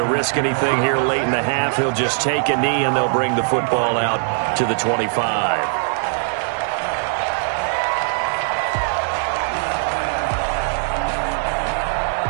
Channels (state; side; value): silent; left; 59 dB below the other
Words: risk anything here late in the half, he'll just take a knee and they'll bring the football out to the 25.